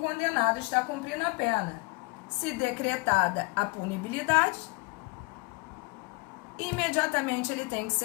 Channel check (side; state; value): right; quieter; 27.1 dB